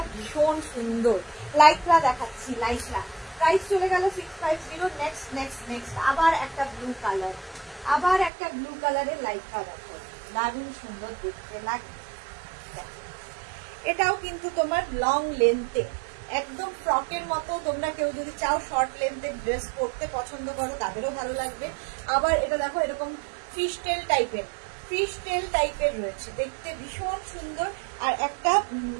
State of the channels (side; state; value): left; drops out; at 8.3 s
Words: ভীষণ সুন্দর। লাইক্রা দেখাচ্ছি, লাইক্রা। প্রাইস চলে গেল 650। নেক্সট আবার একটা ব্লু কালারের লাইক্রা দেখো, দারুণ সুন্দর দেখতে লাগে। এটাও কিন্তু তোমার লং লেন্থে, একদম ফ্রকের মতো। তোমরা কেউ যদি চাও শর্ট লেন্থের ড্রেস পরতে পছন্দ করো তাদেরও ভালো লাগবে। আবার এটা দেখো এরকম ফিশ টেল টাইপের রয়েছে, দেখতে ভীষণ সুন্দর। আর একটা